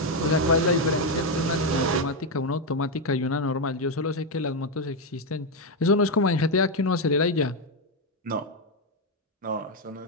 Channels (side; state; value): both; normal; correlation 0.05